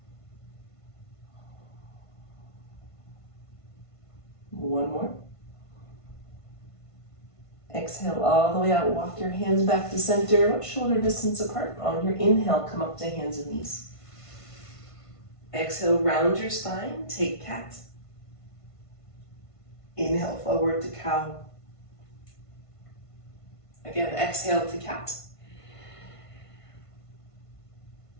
One more. Exhale all the way out. Walk your hands back to center, about shoulder distance apart. On your inhale, come up to hands and knees. Exhale, round your spine, take cat. Inhale, forward to cow. Again, exhale to cat.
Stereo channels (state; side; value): late; right; 1.5 ms